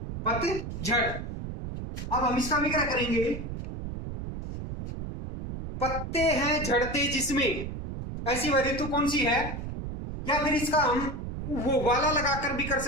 पतझड़, अब हम इसका भी क्या करेंगे? पत्ते हैं झड़ते जिसमें, ऐसी वह ऋतु कौन सी है? या फिर इसका हम वो वाला लगाकर भी कर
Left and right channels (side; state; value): right; noise; rumble, 7 dB below the sound